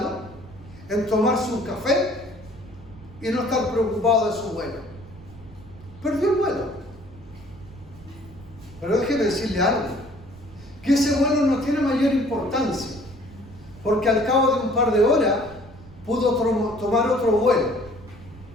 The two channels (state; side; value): noise; right; rumble, 20 dB below the sound